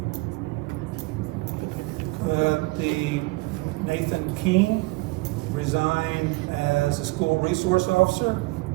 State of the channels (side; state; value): left; quieter; 23.8 dB